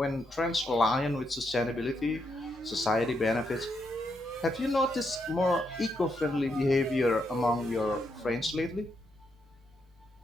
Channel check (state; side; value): normal; both; correlation 0.80